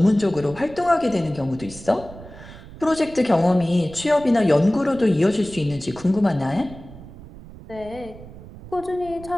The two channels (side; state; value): right; noise; rumble, 17 dB below the sound